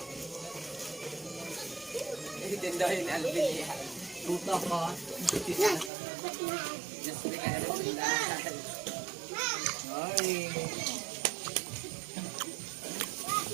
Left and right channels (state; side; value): drops out; left; at 5.9 s